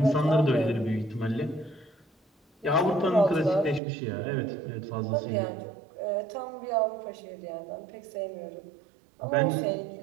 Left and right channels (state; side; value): drops out; left; at 3.8 s